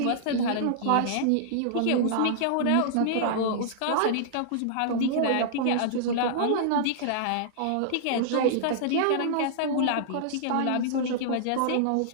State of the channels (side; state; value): both; different; correlation -0.01